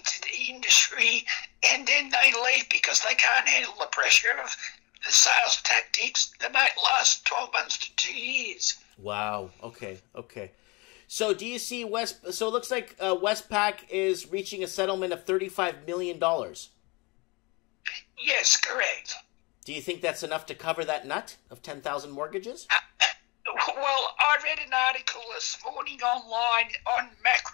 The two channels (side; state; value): right; quieter; 26.8 dB